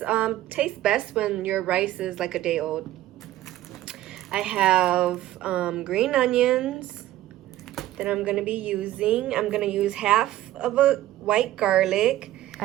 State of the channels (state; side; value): quieter; left; 14.6 dB